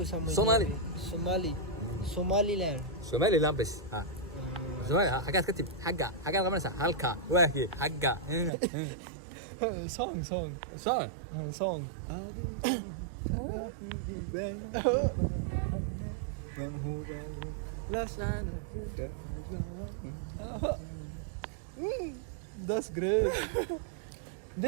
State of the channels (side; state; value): left; drops out; at 8.5 s